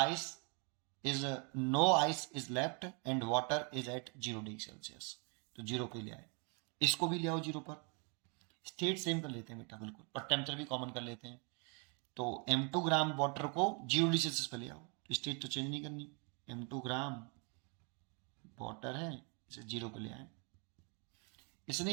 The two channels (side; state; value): left; quieter; 35.6 dB